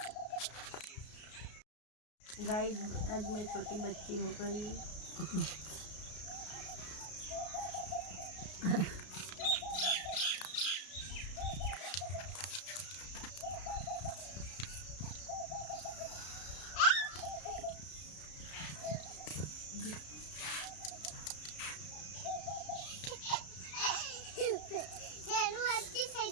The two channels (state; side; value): late; right; 33 ms